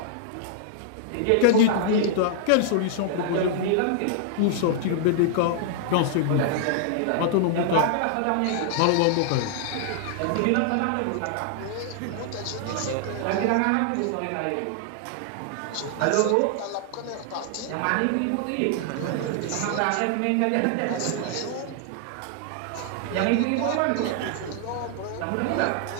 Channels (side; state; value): both; different; correlation 0.00